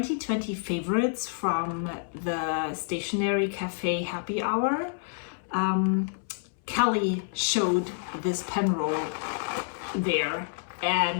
favorites from the Stationery Cafe Happy Hour. Kelly showed this pen roll there,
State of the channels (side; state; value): right; silent; 59 dB below the other